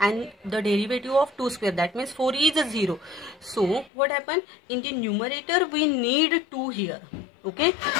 the derivative of 2 square, that means 4 is a 0. So what happened, in the numerator we need 2 here. Okay,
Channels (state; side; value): drops out; right; at 3.9 s